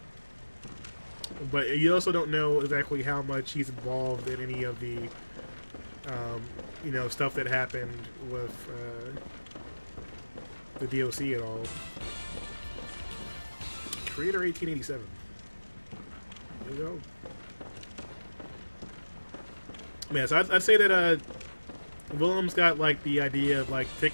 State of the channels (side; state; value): both; inverted; correlation -1.00